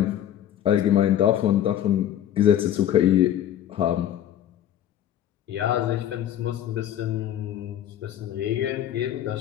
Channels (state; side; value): quieter; right; 11.1 dB